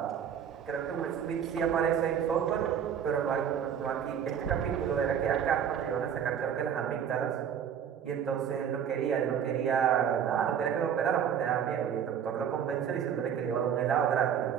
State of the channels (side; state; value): left; quieter; 8.4 dB